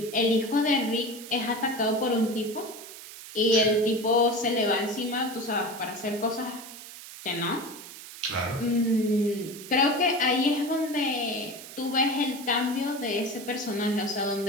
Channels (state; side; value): noise; right; hiss, 14 dB below the sound